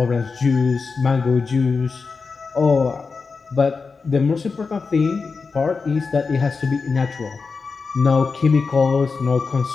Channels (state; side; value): quieter; right; 4.7 dB